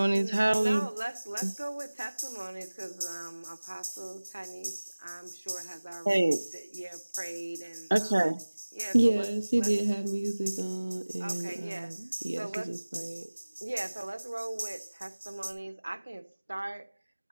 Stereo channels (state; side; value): inverted; both; correlation -1.00